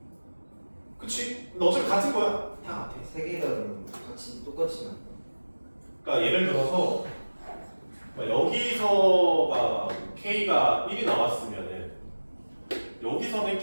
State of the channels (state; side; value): inverted; both; correlation -1.00